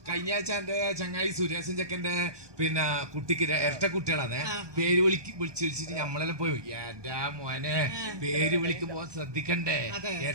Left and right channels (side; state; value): left; late; 1.2 ms